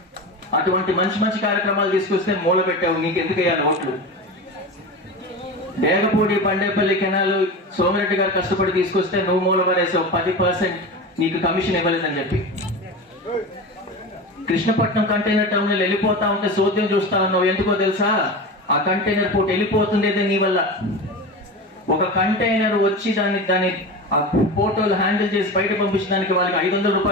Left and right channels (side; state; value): both; normal; correlation 0.27